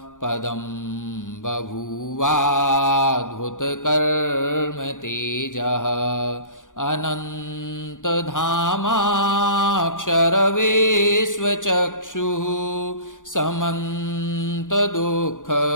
पदं बभूवाद्भुतकर्म तेजः अनन्तधामाक्षरवेश्वचक्षुः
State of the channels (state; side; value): late; right; 0.88 ms